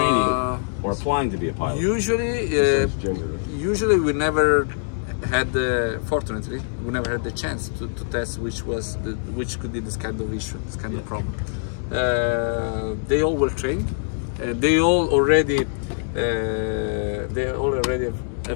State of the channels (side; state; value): right; silent; digital silence